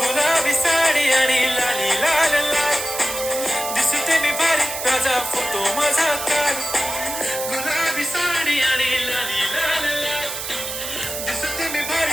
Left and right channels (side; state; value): right; noise; hiss, 6 dB below the sound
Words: गुलाबी साडी आणि लाली लाल लाल दिसते मी भारी राजा फोटो माझा काल गुलाबी साडी आणि लाली लाल लाल दिसते मी